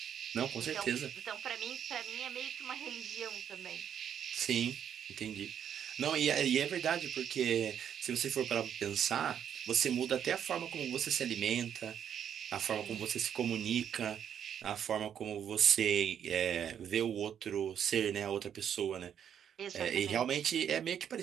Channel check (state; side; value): quieter; left; 8.9 dB